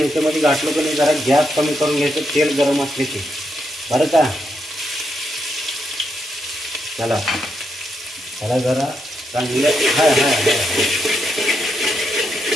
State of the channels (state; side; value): normal; both; correlation 0.81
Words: घातलं की नाही जरा गॅस कमी करून घ्यायचं, तेल गरम असले की, बरं का. चला त्याला जरा चांगलं